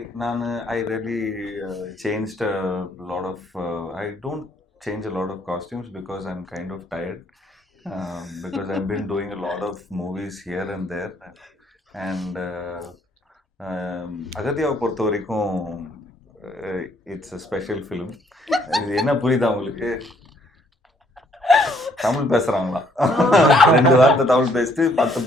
நான் I really changed a lot of I don't change a lot of costumes because I'm kind of tired because I've been doing a lot of movies here and there and அகத்தியாவை பொறுத்த வரைக்கும் இட்ஸ் a special film. இது என்ன புரியுதா உங்களுக்கு? தமிழ் பேசுறாங்களா? 2 வார்த்தை தமிழ் பேசிட்டு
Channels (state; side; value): normal; both; correlation 0.66